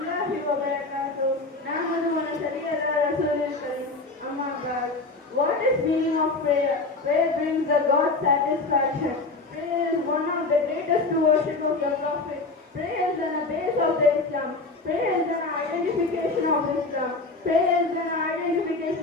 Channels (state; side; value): quieter; right; 3.5 dB